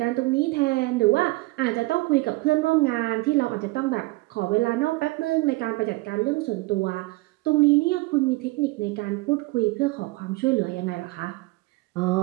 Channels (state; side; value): quieter; left; 22.2 dB